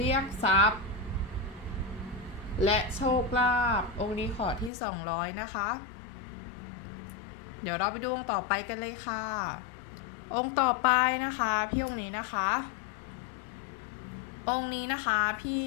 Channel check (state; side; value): drops out; right; at 4.7 s